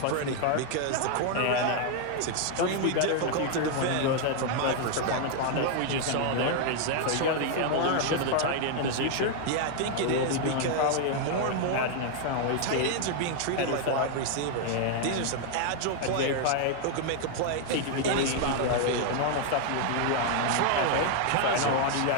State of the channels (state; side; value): different; both; correlation 0.00